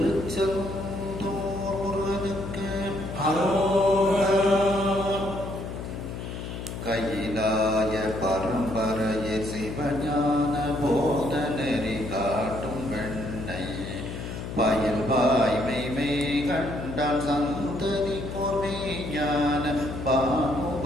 முருகனுக்கு கையிலாய பரம்பரைய சிவஞான போதனரி காட்டும் வெண்ணை பயில் வாய்மை கண்டால் சந்ததி பொறிஞான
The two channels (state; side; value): noise; left; hum, 7 dB below the sound